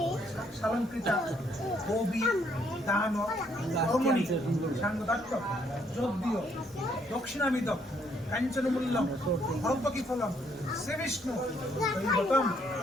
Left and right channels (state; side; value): normal; both; correlation 0.69